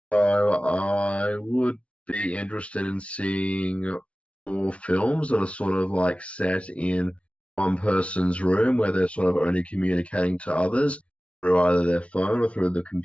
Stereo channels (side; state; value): right; late; 0.062 ms